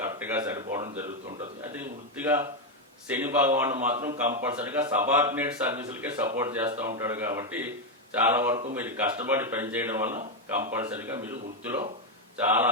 సరిపోవడం జరుగుతుంటుంది. అది వృత్తిగా శని భగవాను మాత్రం కంపల్సరీగా సబార్డినేట్ సర్వీసులకే సపోర్ట్ చేస్తూ ఉంటాడు కాబట్టి చాలా వరకు మీరు కష్టపడి పనిచేయడం వల్ల కంపల్సరీగా మీరు వృత్తిలో చాలా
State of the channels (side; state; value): both; normal; correlation 0.05